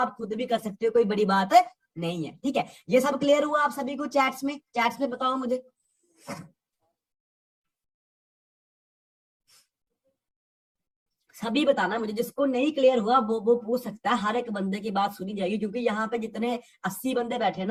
खुद भी कर सकते हो, कोई बड़ी बात नहीं है, ठीक है। ये सब क्लियर हुआ आप सभी को? चैट्स में बताओ मुझे। सभी बताना मुझे, जिसको नहीं क्लियर हुआ वो पूछ सकता है, हर एक बंदे की बात सुनी जाएगी, क्योंकि यहाँ पे जितने 80 बंदे बैठे हैं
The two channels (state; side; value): identical; both; correlation 1.00